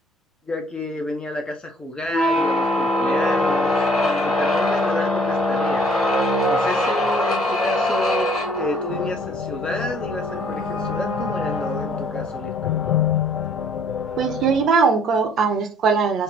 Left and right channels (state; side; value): normal; both; correlation 0.59